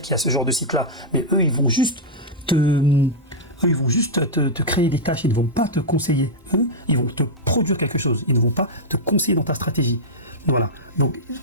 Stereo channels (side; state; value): both; normal; correlation -0.07